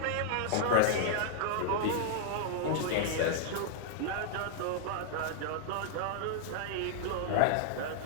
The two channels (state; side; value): different; both; correlation 0.00